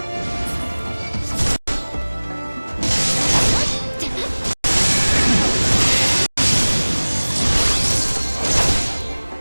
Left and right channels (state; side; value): inverted; both; correlation -1.00